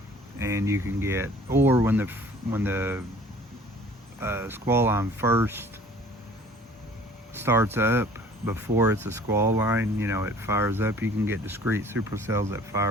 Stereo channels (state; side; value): normal; both; correlation 0.50